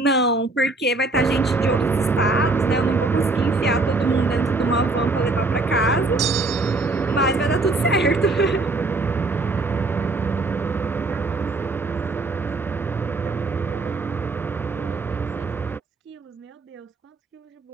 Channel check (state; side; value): quieter; left; 3.3 dB